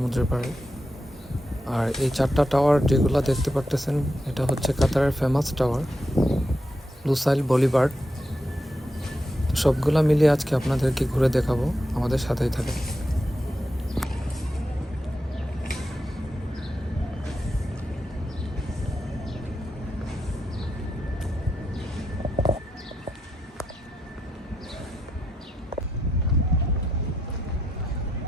পাড়ে। আর এই 4টা টাওয়ার যেগুলো দেখতে পারতেছেন, এটা হচ্ছে কাতারের ফেমাস টাওয়ার লুসাইল বলিভার্ড। তো সবগুলা মিলিয়ে আজকে আপনাদেরকে ঘুরে দেখাবো, আমাদের সাথেই থাকে।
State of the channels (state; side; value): normal; both; correlation 0.85